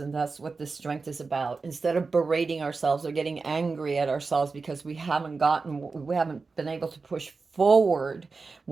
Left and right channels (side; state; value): left; quieter; 4.3 dB